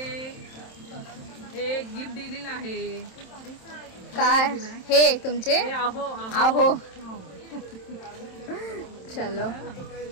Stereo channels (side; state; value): right; late; 27 ms